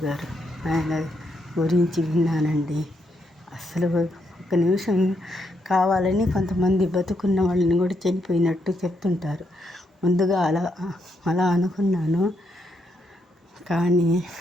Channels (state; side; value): normal; both; correlation 0.78